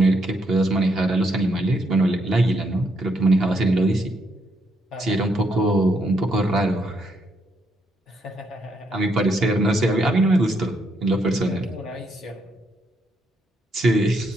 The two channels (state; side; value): normal; both; correlation 0.76